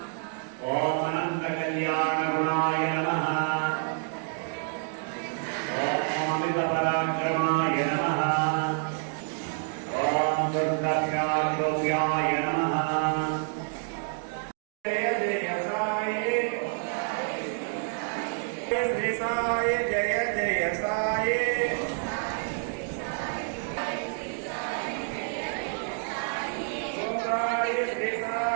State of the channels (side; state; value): left; silent; 59 dB below the other